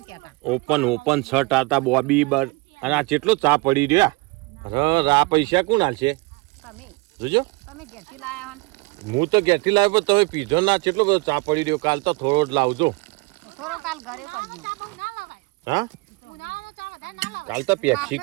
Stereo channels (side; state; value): left; quieter; 25.7 dB